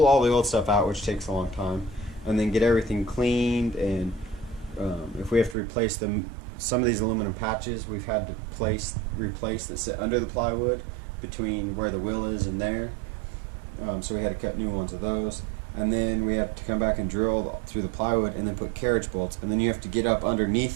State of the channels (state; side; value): drops out; left; at 5.6 s